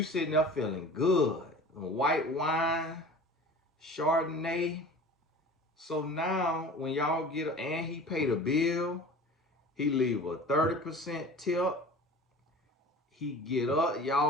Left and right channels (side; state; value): both; normal; correlation 0.40